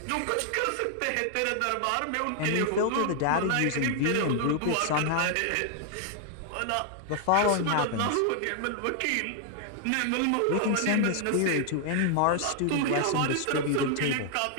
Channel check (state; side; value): different; both; correlation 0.00